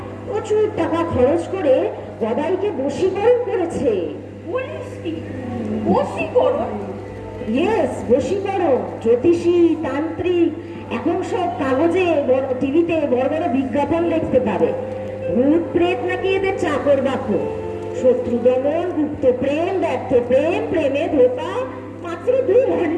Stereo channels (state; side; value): identical; both; correlation 1.00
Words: প্রচুর টাকা খরচ করে গদাইকে বশীকরণ করেছে। বলিস কি? বশীকরণ? ইয়েস, বশীকরণ। জ্যোতিষী, তান্ত্রিক, এখন সব কাগজে টিভিতে বড় বড় বিজ্ঞাপন দেখতে পাবে। ভূত প্রেত নাকি এদের চাকর বাকর। শত্রু দমন, গুপ্ত প্রেম, ব্যর্থ প্রেম, প্রেমে ধোকা, মাত্র 2